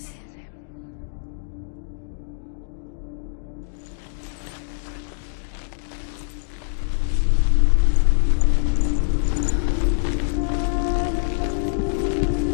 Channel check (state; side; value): silent; right; digital silence